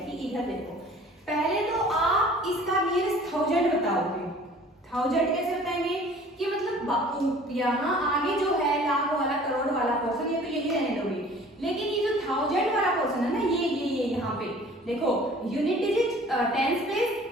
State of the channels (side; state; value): both; normal; correlation 0.49